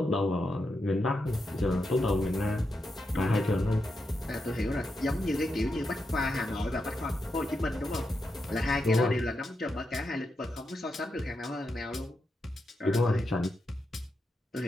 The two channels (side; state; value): both; normal; correlation 0.85